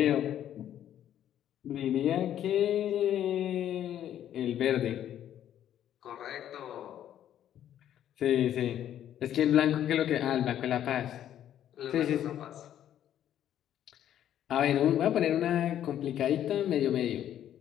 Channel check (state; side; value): quieter; right; 10.9 dB